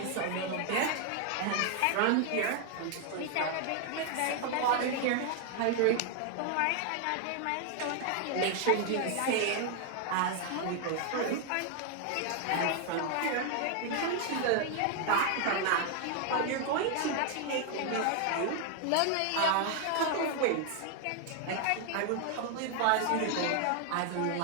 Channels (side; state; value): both; different; correlation 0.00